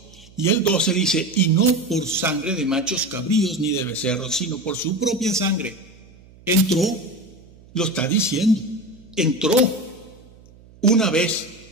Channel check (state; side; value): noise; right; hum, 24 dB below the sound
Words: Y el 12 dice, y no por sangre de machos cabríos ni de becerros, sino por su propia sangre. Entró, lo está diciendo, entró una vez